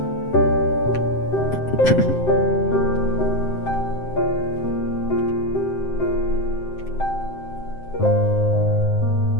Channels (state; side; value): late; right; 7.7 ms